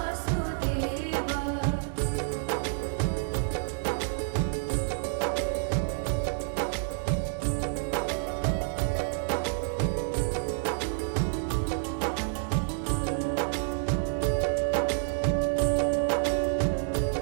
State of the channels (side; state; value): left; silent; digital silence